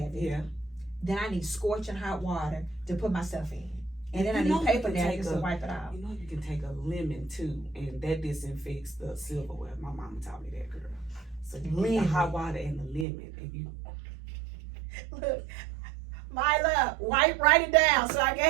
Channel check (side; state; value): left; drops out; at 13.1 s